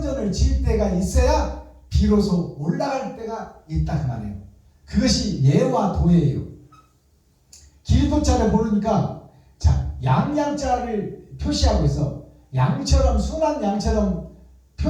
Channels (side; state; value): both; identical; correlation 1.00